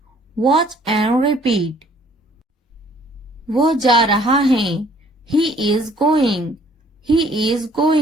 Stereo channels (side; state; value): both; normal; correlation 0.59